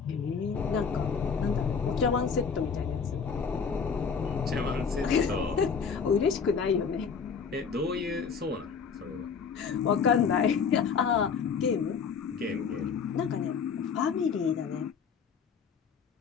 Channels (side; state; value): right; quieter; 6.0 dB